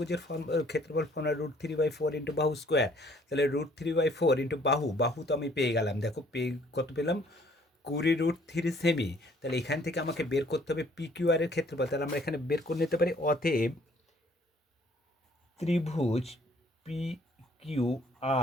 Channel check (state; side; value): normal; both; correlation 0.60